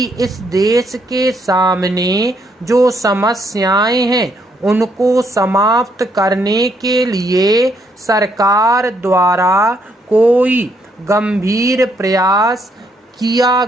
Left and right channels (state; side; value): normal; both; correlation 0.73